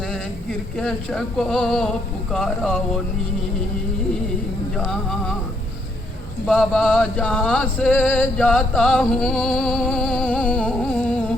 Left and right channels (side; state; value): both; normal; correlation 0.72